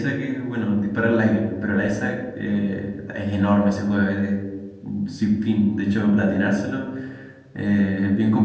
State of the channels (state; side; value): identical; both; correlation 1.00